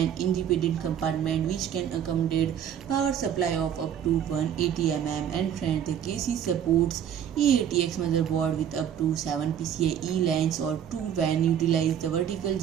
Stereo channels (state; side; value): quieter; left; 9.4 dB